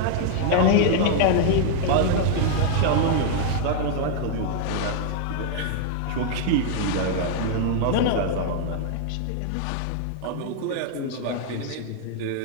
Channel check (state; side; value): different; both; correlation 0.00